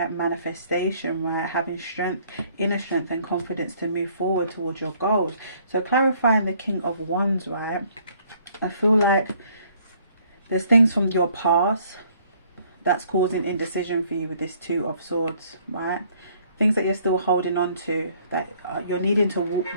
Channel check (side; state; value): both; inverted; correlation -0.62